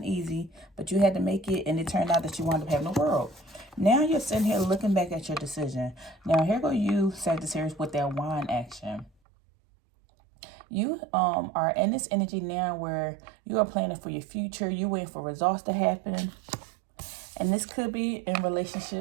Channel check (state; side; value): drops out; left; at 9.1 s